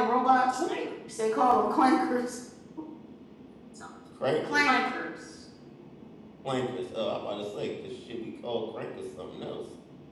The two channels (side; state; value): both; identical; correlation 1.00